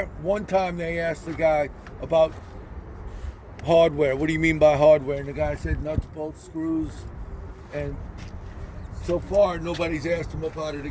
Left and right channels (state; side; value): identical; both; correlation 1.00